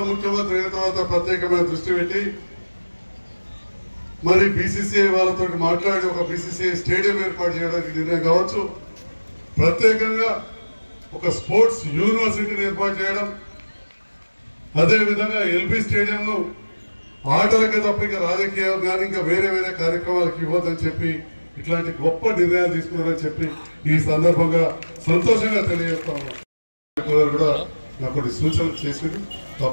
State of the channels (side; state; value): both; inverted; correlation -1.00